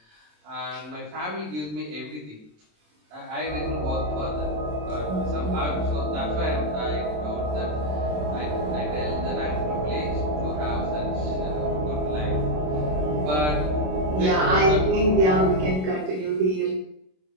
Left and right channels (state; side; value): late; left; 27 ms